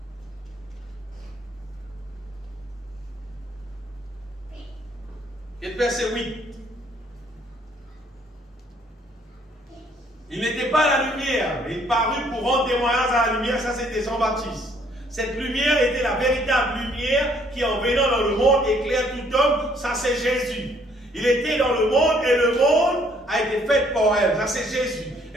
Et le verset 8. Il n'était pas à la lumière, mais il parut pour rendre témoignage à la lumière. Ça, c'était Jean-Baptiste. Cette lumière était la véritable lumière qui, en venant dans le monde, éclaire tout homme. Ça, c'est Jésus. Il était dans le monde et le monde a été fait par elle. Ça, c'est Jésus.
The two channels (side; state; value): both; normal; correlation 0.64